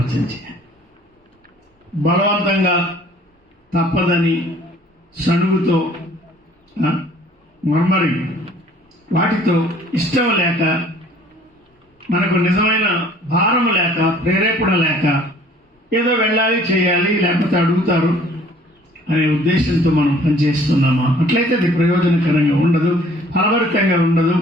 బలవంతంగా తప్పదని సణుగుతో, మర్మరి వాటితో, ఇష్టం లేక, మనకు నిజమైన భారము లేక, ప్రేరేపణ లేక, ఏదో వెళ్ళాలి, చేయాలి, లేకపోతే అడుగుతారు అనే ఉద్దేశంతో మనం పనిచేస్తున్నామా? అట్లయితే అది ప్రయోజనకరంగా ఉండదు, ఫలభరితంగా ఉండదు,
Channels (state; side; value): normal; both; correlation 0.54